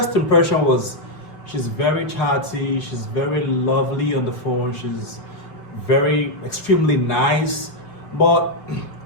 impression was, she's very chatty, she's very lovely on the phone, she's very extremely nice. But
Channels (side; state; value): right; late; 4.8 ms